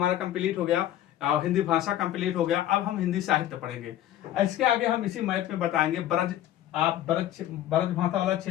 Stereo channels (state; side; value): quieter; right; 12.5 dB